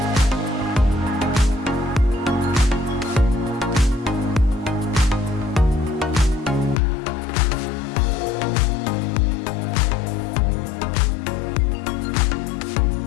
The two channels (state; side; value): drops out; right; at 6.8 s